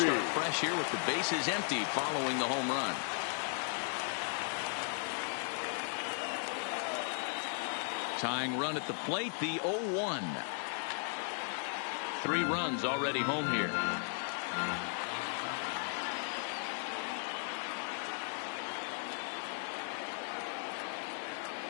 he'll start fresh here with the bases empty following the home run. Tying run at the plate, the 0-1. 3 runs already home here.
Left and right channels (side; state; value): right; silent; 53 dB below the other